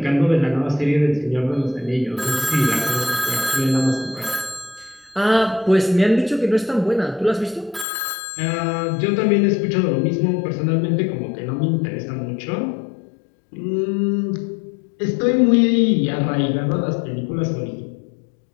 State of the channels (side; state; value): right; drops out; at 7.9 s